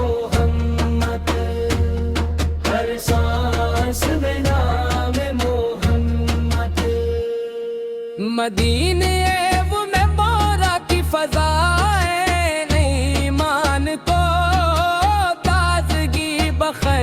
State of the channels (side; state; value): both; identical; correlation 1.00